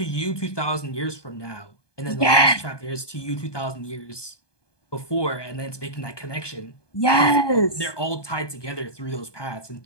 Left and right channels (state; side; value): late; right; 1.2 ms